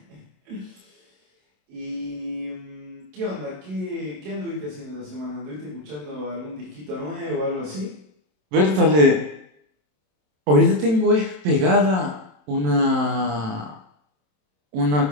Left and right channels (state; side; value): late; left; 27 ms